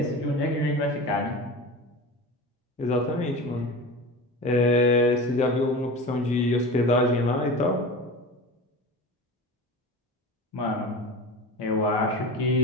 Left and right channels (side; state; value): both; normal; correlation 0.31